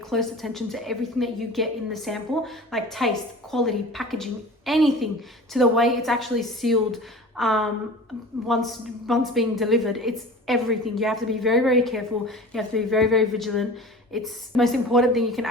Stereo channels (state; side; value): normal; both; correlation 0.38